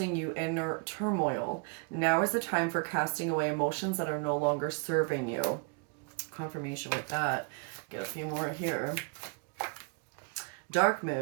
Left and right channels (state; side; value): quieter; left; 34.6 dB